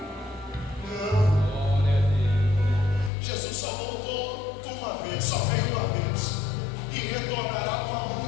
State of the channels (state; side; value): drops out; right; at 3.1 s